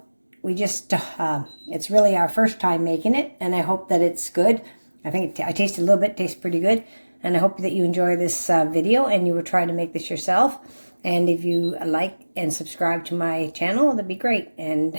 we just, it's really our first time making it, and I hope that it's good. I think I tasted a little bit, tastes pretty good, and I hope that you enjoy this video, and you will try to make this yourself. And if you like and subscribe to my channel, that'd be great, and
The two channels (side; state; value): both; inverted; correlation -1.00